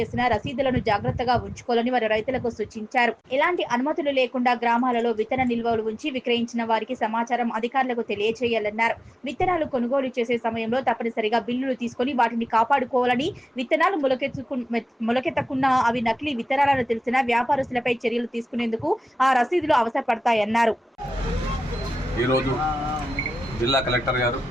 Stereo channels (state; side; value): normal; both; correlation 0.95